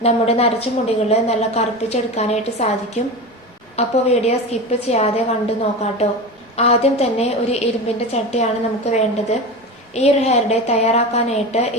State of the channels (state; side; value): normal; both; correlation 0.26